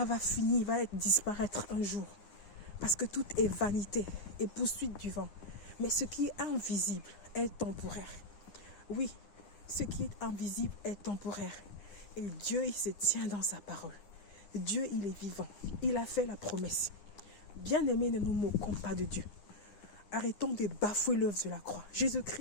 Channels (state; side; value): late; right; 9.9 ms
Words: va finir, va disparaître un jour. Parce que tout est vanité et poursuite du vent. Mais ce qui est invisible est temporaire. Oui, ce qui est invisible est temporaire. Et Dieu, il se tient dans sa parole. Dieu, il est vivant. Il a fait la promesse. Bien-aimés, ne nous moquons pas de Dieu. Arrêtons de bafouer l'œuvre de la croix.